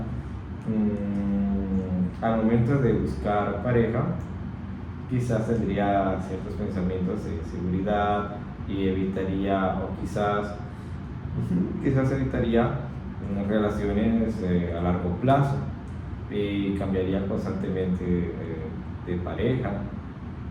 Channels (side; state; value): both; identical; correlation 1.00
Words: al momento de buscar pareja, quizás tendría ciertos pensamientos de seguridad y evitaría, o quizás evitaría relaciones a largo plazo y cambiaría constantemente de pareja.